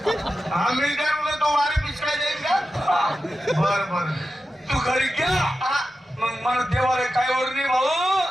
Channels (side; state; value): both; normal; correlation 0.92